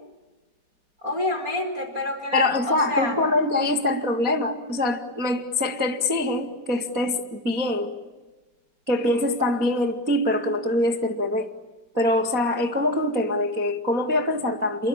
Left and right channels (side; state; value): left; late; 4.2 ms